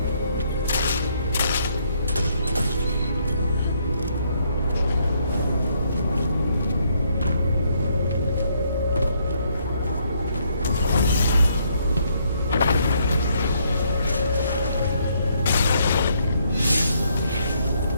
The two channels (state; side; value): inverted; both; correlation -0.71